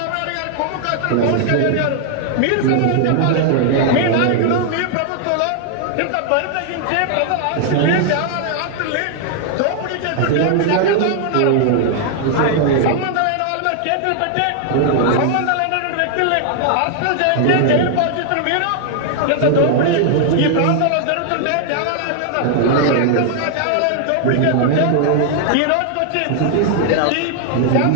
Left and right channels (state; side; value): different; both; correlation 0.00